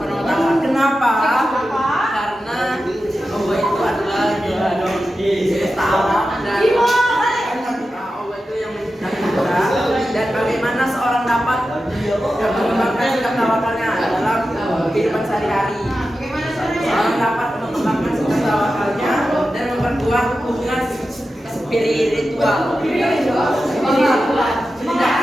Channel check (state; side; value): normal; both; correlation 0.92